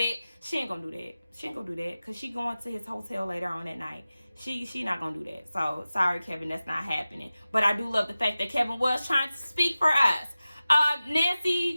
She ain't gonna do that. She ain't gonna do that because she going to his hotel later on that night. She not gonna do that. So, sorry, Kevin, that's not happening. But I do love the fact that Kevin was trying to speak for us. Nancy,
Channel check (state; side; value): inverted; both; correlation -0.96